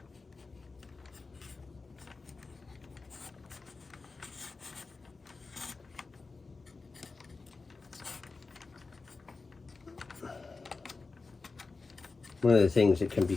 One of the things that can be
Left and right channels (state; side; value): quieter; right; 4.1 dB